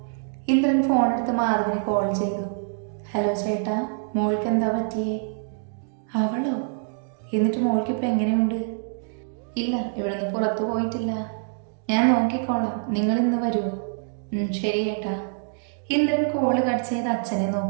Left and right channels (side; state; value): left; silent; 62 dB below the other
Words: ഇന്ദ്രൻ ഫോണെടുത്ത് മാധവിന് കോൾ ചെയ്തു. ഹലോ ചേട്ടാ, മോൾക്ക് എന്താ പറ്റിയേ? അവളോ? എന്നിട്ട് മോൾക്കിപ്പോൾ എങ്ങനെയുണ്ട്? ഇല്ല, ഇവിടുന്ന് പുറത്തു പോയിട്ടില്ല. ഞാൻ നോക്കിക്കോളാം, നിങ്ങൾ ഇന്ന് വരുമോ? ശരി ഏട്ടാ. ഇന്ദ്രൻ കോള് കട്ട് ചെയ്ത് അച്ഛനെ